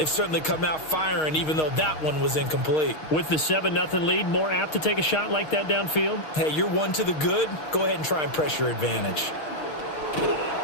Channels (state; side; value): late; right; 6.4 ms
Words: certainly come out firing, even though that one was incomplete. With the 7-0 lead, more apt to take a shot like that downfield? Hey, you're one to the good. Go ahead and try and press your advantage.